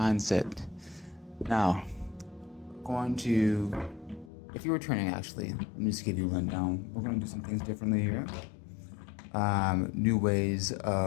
Now, going to, if you're returning actually, let me just give you a rundown. We're going to do some things differently here. New ways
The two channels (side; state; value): right; drops out; at 4.3 s